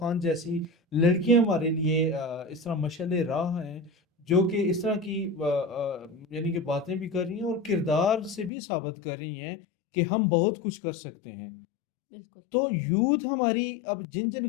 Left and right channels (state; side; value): drops out; right; at 8.5 s